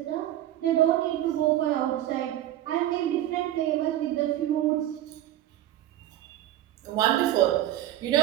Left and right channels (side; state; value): left; quieter; 13.2 dB